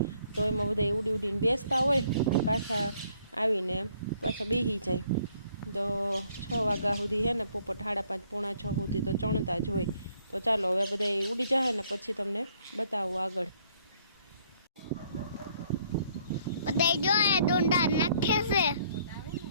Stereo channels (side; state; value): both; inverted; correlation -0.65